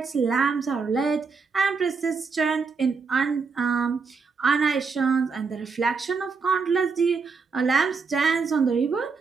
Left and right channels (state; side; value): quieter; left; 5.0 dB